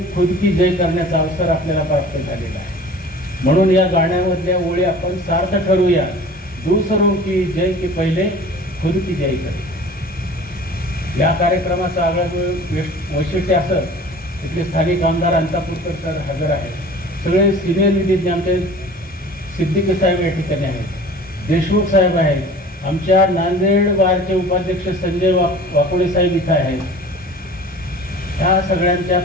खुद की जय करण्याचा अवसर आपल्याला प्राप्त झालेला आहे. म्हणून या गाण्यामधल्या ओळी आपण सार्थ ठरूया. दूसरों की जय के पहिले खुद की जय करे. या कार्यक्रमाचं आगळं वैशिष्ट्य असं तिथले स्थानिक आमदार अंतापूरकर सर हजर आहेत. सगळे सिनियर विधिज्ञ आमचे सिद्दीकी साहेब या ठिकाणी आहेत, देशमुख साहेब आहेत, आमच्या नांदेड बारचे उपाध्यक्ष संजय वाकोडे साहेब इथं आहेत. ह्या सगळ्यांच्या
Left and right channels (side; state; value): both; normal; correlation 0.43